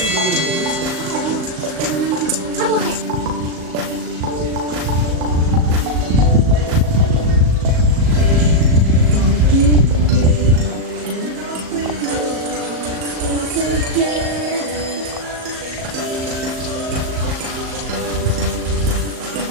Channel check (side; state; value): left; late; 38 ms